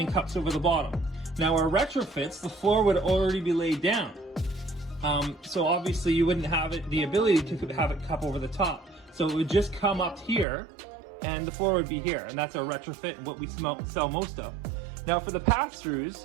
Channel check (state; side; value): drops out; left; at 10.5 s